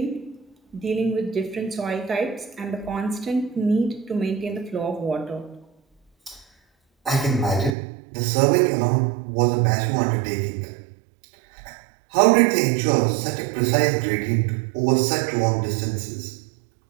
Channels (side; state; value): left; drops out; at 7.8 s